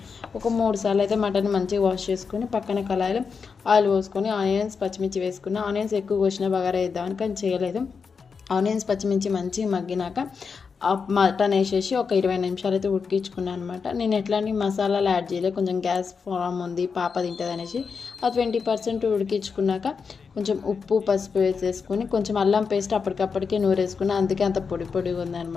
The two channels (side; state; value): right; quieter; 5.5 dB